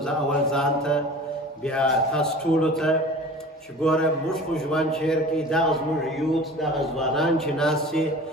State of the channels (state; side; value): normal; both; correlation 0.40